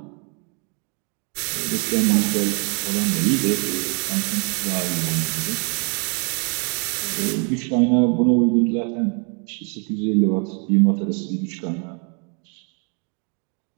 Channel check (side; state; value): left; quieter; 36.2 dB